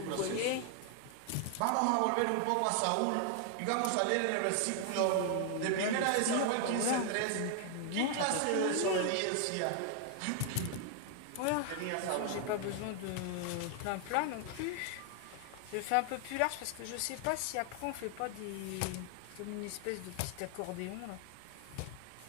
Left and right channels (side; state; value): both; different; correlation 0.00